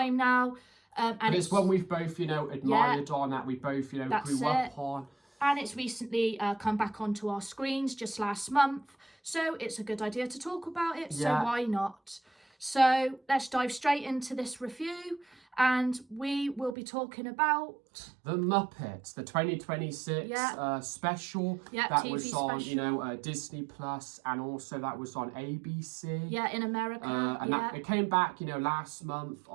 now. And it's one we've both, admired on, that we both, grew up on. And it's recently come back onto our screens just last month. So it's a good idea to talk about it. So why not? So let's dive straight into this review. And we will be talking about The Muppets, the 2026 special that TV was on, special. Disney Plus, and also that was on ABC. Yeah, in America. It came back, last month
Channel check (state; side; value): drops out; left; at 16.8 s